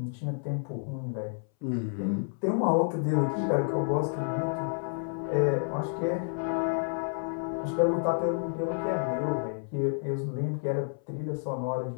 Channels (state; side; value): silent; right; 58 dB below the other